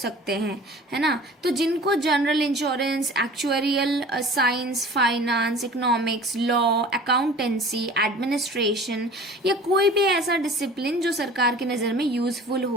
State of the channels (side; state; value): both; normal; correlation 0.43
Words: हैं, है ना, तो जिनको general insurance, actuarial science, finance, economics, law, accountancy, administration या कोई भी ऐसा डिसिप्लिन जो सरकार की नज़र में यूजफुल